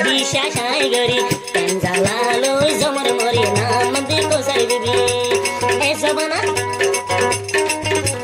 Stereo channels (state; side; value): identical; both; correlation 1.00